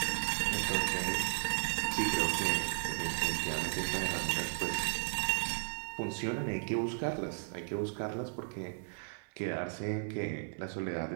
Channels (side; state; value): left; silent; 54 dB below the other